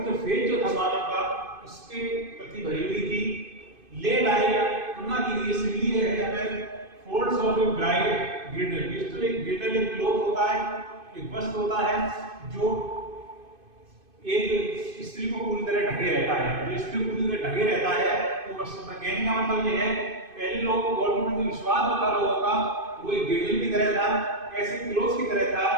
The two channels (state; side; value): late; left; 2.5 ms